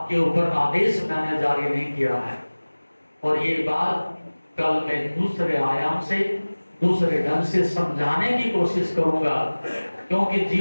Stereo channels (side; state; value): both; inverted; correlation -1.00